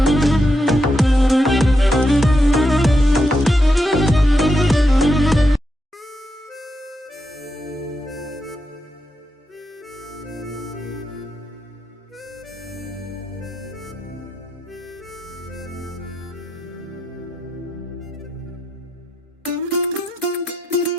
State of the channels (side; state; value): both; normal; correlation 0.84